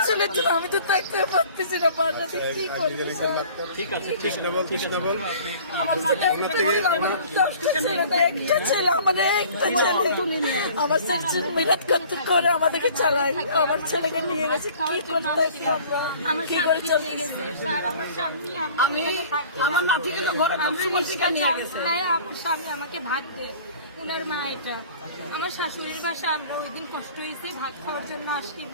ছেলের জন্য আমি তো দেখতে পারতেছি না, বাসাতে কি করবো? ঠিক আছে, ঠিক না বল, ঠিক না বল। আমার ছেলে, আমার ছেলে মেহনত করতে করে আমাদেরকে চালাই। আমার ছেলেকে নিয়ে গেছে, কি করতে আমার স্বামী আমার নাতিকে তো ঘরে নিয়ে গেছে। স্বামী আমাকে ভাত দেয়, উনার মা এটা। আমার শাশুড়ির বাসা, আমরা ওই দিন কষ্ট হয়েছে, ভাত খাওয়ার জন্য আসি,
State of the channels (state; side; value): inverted; both; correlation -0.48